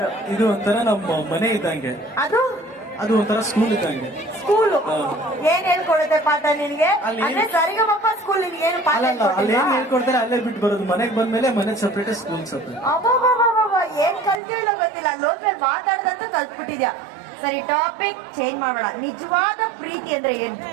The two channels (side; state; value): left; drops out; at 14.4 s